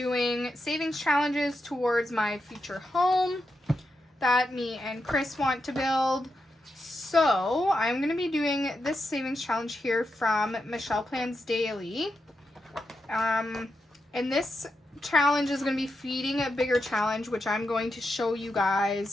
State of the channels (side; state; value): both; normal; correlation 0.86